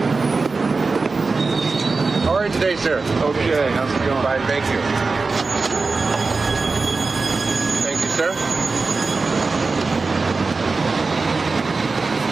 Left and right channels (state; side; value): quieter; left; 4.0 dB